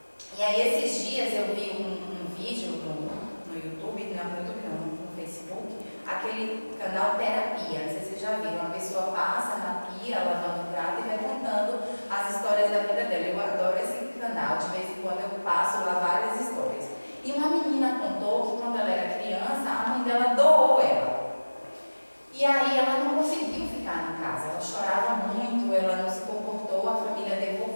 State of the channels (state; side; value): inverted; both; correlation -1.00